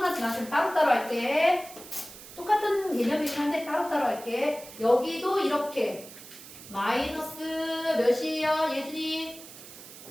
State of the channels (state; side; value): noise; right; hiss, 16 dB below the sound